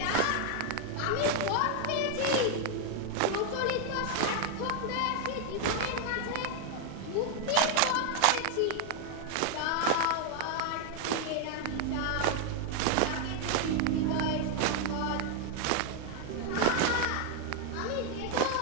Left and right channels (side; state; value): both; different; correlation 0.00